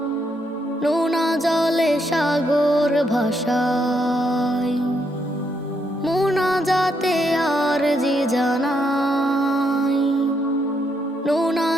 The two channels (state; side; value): normal; both; correlation 0.77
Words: নোনা জলে সাগর ভাসাই। মুনাজাতে আরজি জানাই, নোনা